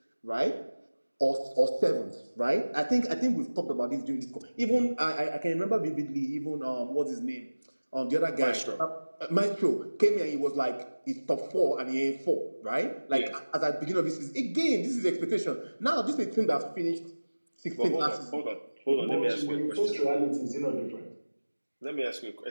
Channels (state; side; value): inverted; both; correlation -1.00